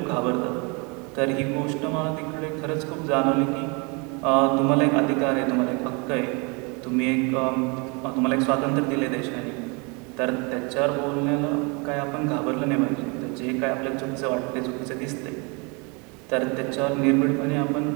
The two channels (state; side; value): quieter; left; 30.9 dB